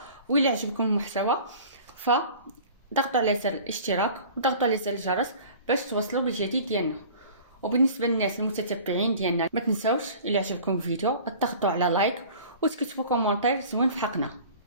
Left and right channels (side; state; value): both; inverted; correlation -0.43